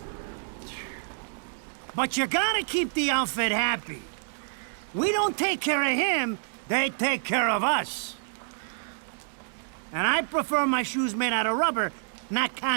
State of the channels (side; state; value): left; silent; digital silence